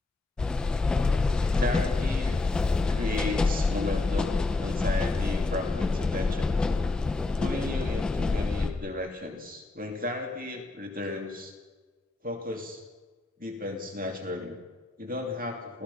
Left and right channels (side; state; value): right; quieter; 3.1 dB